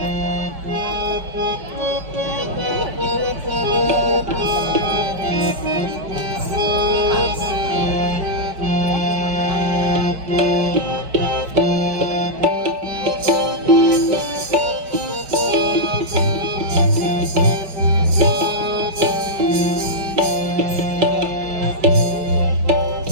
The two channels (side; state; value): left; late; 5.0 ms